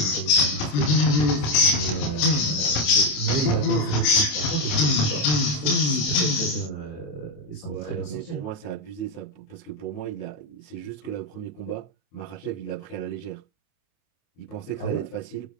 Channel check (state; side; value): late; right; 27 ms